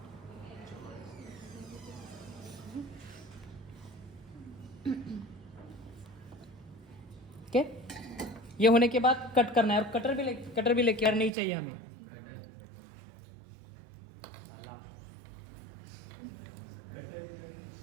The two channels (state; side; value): drops out; left; at 11.3 s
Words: ओके, ये होने के बाद कट करना है, और कटर भी लेके नहीं चाहिए हमें।